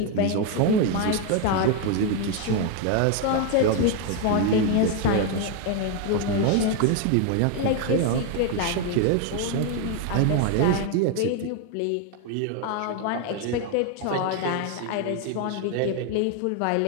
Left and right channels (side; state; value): both; different; correlation 0.01